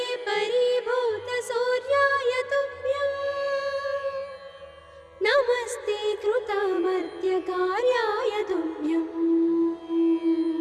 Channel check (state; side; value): identical; both; correlation 1.00